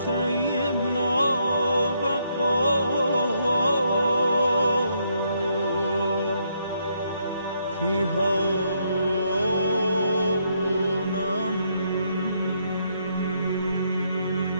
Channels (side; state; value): both; inverted; correlation -0.74